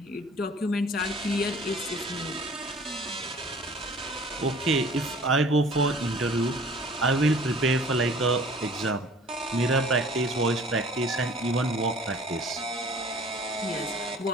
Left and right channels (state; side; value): normal; both; correlation 0.49